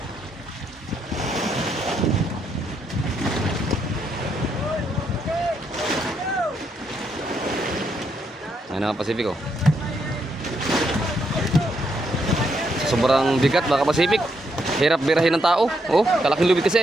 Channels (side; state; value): both; normal; correlation 0.77